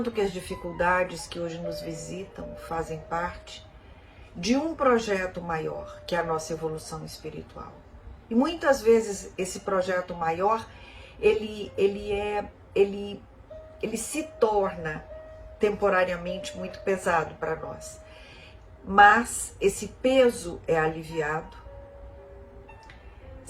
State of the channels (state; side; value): identical; both; correlation 1.00